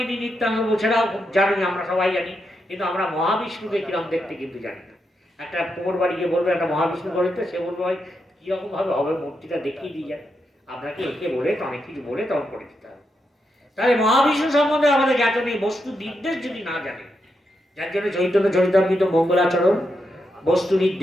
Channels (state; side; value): normal; both; correlation 0.84